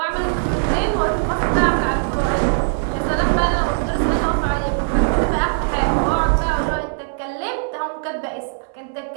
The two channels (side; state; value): left; silent; 64 dB below the other